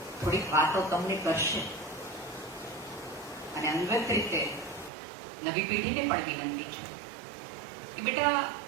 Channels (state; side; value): drops out; left; at 4.9 s